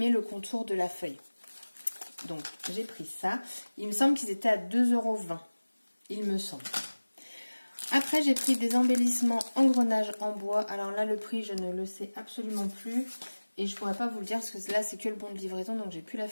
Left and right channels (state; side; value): inverted; both; correlation -1.00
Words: le contour de la feuille. Donc j'ai pris ça. Il me semble qu'ils étaient à 2,20 €. Il me semble. Après, j'ai pris des embellissements engrenages en bois. Alors là, le prix, je ne le sais absolument plus. Et je pourrais pas vous le dire parce que là, c'est que le bon de livraison, donc j'ai plus la